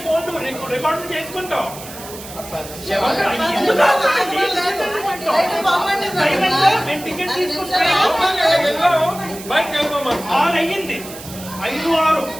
ఫోన్లు రికార్డులు చేసుకుంటాం. టికెట్ అయ్యింది 5-6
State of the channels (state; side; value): noise; right; hiss, 14 dB below the sound